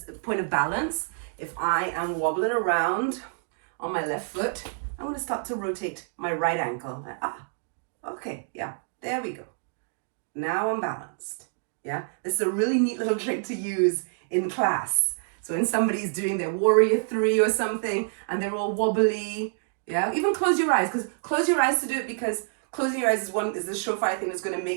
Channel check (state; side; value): silent; left; digital silence